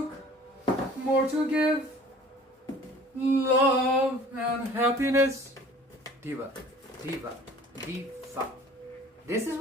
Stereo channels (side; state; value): both; normal; correlation 0.49